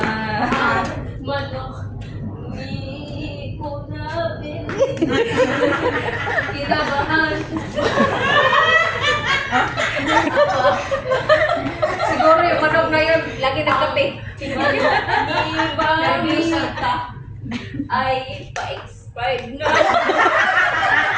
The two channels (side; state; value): both; identical; correlation 1.00